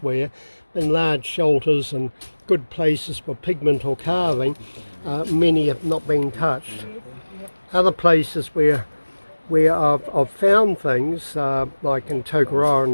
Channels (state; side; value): inverted; both; correlation -1.00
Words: in large shelters and good places for pigment or carving. Many have not been touched. Other places where I've found things, like in Tokoroa in